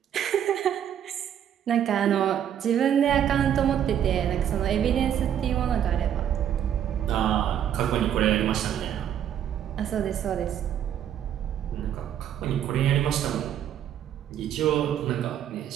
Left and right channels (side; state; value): left; quieter; 9.8 dB